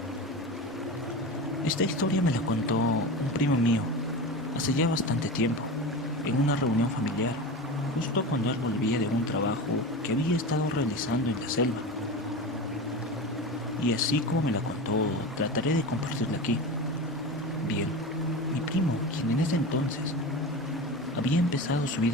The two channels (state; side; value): normal; both; correlation 0.27